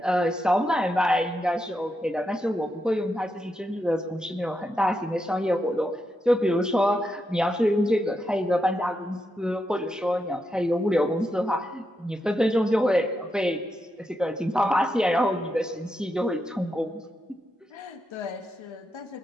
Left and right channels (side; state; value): both; normal; correlation 0.84